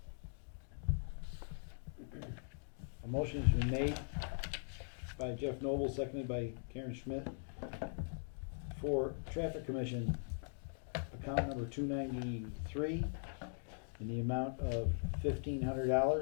A motion has been made by Jeff Noble, seconded by Karen Schmidt, for Traffic Commission, account number 293, in the amount of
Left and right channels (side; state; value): right; silent; digital silence